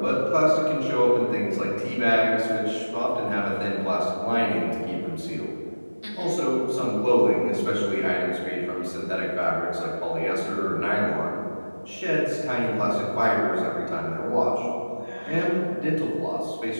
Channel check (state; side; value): inverted; both; correlation -1.00